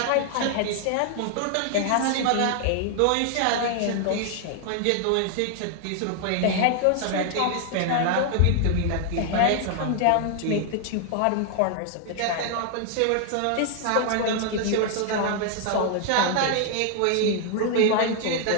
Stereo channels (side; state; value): both; different; correlation 0.00